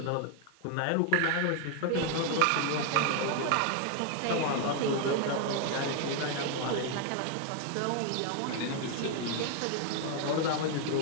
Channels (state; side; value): different; both; correlation 0.01